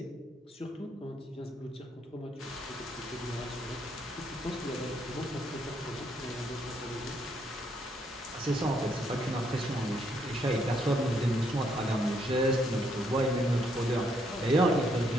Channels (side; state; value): both; normal; correlation 0.73